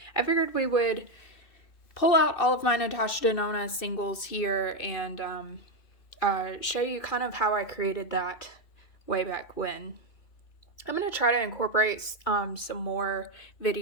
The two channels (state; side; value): late; right; 2.7 ms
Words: I figured we would pull out all of my Natasha Denona singles here and show you kind of how I created that way back when. I'm going to try to incorporate some more